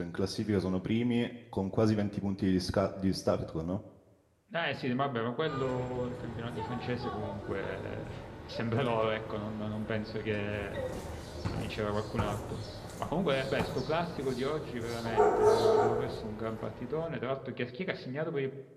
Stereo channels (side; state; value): both; identical; correlation 1.00